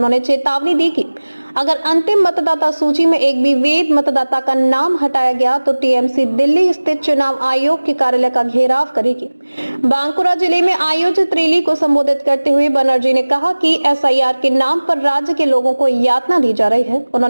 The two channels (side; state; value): both; inverted; correlation -1.00